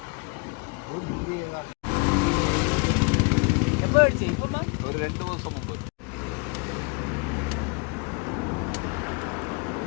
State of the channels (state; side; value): quieter; right; 31.7 dB